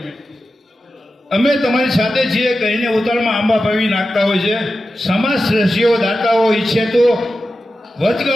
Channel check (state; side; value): normal; both; correlation 0.92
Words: અમે તમારી સાથે છીએ કહીને ઉતાળમાં આંબા પાવી નાખતા હોય છે. સમાજ શ્રેષ્ઠીઓ દાતાઓ ઈચ્છે તો